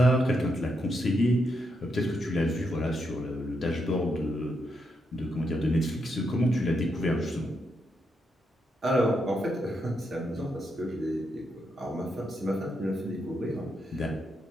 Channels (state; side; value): normal; both; correlation 0.81